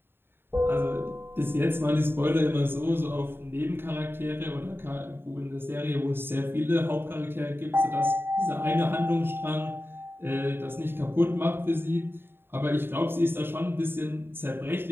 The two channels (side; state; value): left; late; 0.11 ms